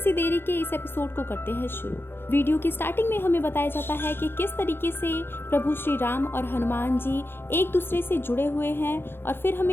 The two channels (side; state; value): right; late; 0.11 ms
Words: देरी के इस एपिसोड को करते हैं शुरू। वीडियो की स्टार्टिंग में हमें बताया जाता है कि किस तरीके से प्रभु श्री राम और हनुमान जी एक दूसरे से जुड़े हुए हैं। और फिर